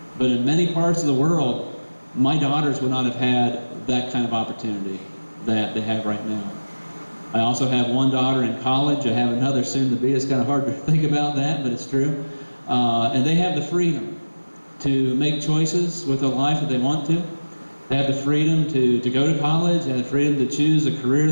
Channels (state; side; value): inverted; both; correlation -1.00